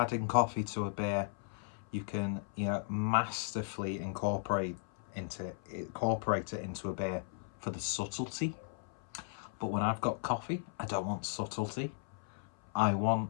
coffee to a beer, you can, masterfully incorporate it into a beer for the subtlety. But when I've got coffee, I don't want subtlety. I want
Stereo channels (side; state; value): right; silent; 54 dB below the other